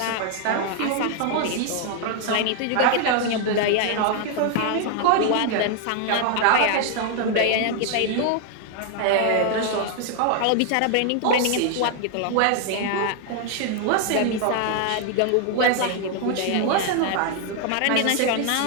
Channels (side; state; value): both; different; correlation 0.00